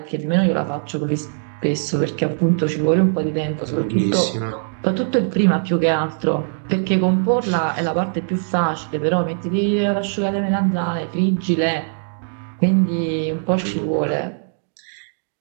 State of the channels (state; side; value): silent; left; digital silence